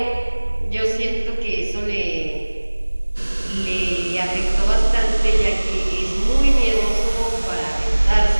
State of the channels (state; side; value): inverted; both; correlation -1.00